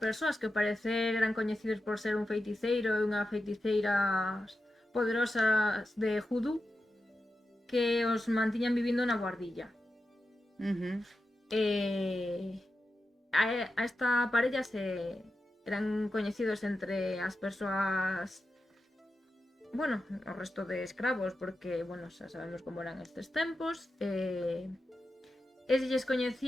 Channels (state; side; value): normal; both; correlation 0.90